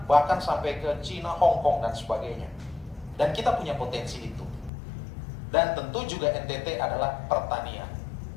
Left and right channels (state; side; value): drops out; right; at 4.7 s